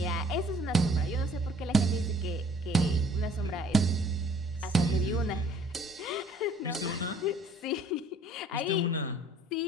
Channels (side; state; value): both; normal; correlation 0.56